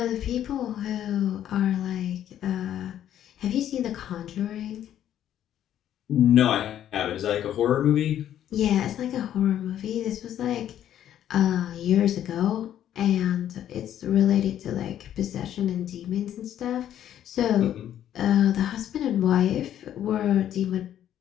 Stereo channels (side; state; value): right; quieter; 11.0 dB